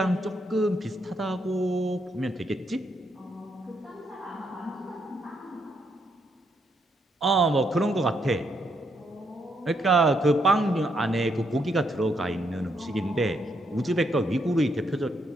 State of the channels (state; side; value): normal; both; correlation 0.76